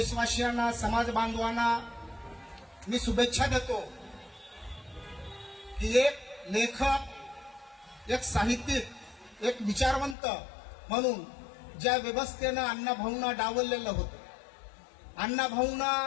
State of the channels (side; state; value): right; drops out; at 10.2 s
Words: समाज बांधवांना मी शुभेच्छा देतो की एक लेखक, एक साहित्यिक, एक विचारवंत म्हणून ज्या व्यवस्थेनं अण्णाभाऊंना डावललेलं होतं, अण्णाभाऊंना